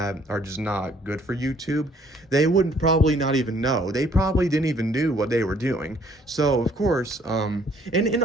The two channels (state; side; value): normal; both; correlation 0.62